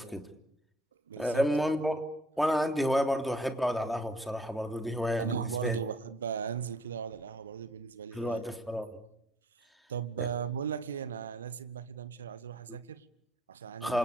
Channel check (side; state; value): both; normal; correlation 0.61